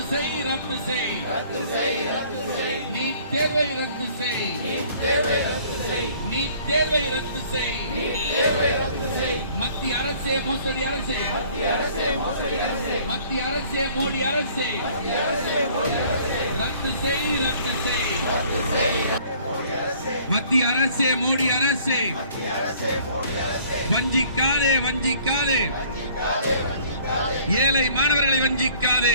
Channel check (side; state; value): both; inverted; correlation -0.55